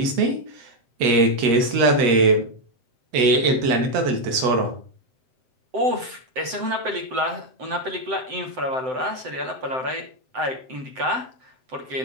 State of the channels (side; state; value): left; late; 7.7 ms